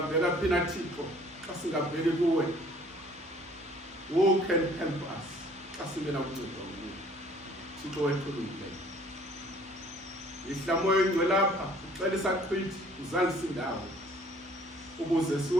phina Thixo xa singabheki kuwe. Who can help us xa singena kunceda kuwe? Thixo wethu olungileyo. Ihlamoyo ingcwele lapha uxela isaqhithi uzalise indawo ukuze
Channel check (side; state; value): both; normal; correlation 0.56